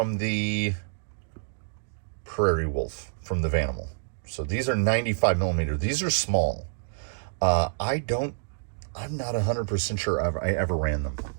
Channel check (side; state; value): left; silent; digital silence